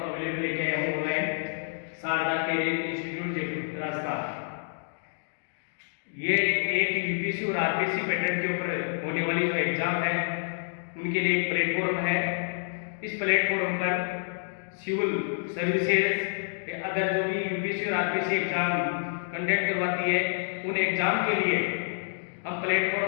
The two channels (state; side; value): silent; right; digital silence